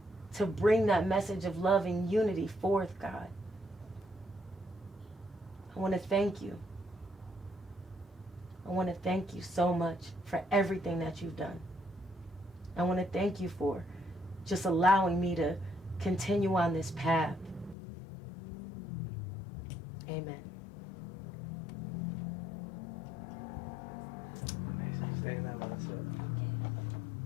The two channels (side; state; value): right; drops out; at 17.8 s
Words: to bring that message of love and unity forth, God. I want to thank you. I want to thank you so much for everything that you've done. I want to thank you for just allowing me to continue on this path. Amen. Amazing. Stay in that mindset.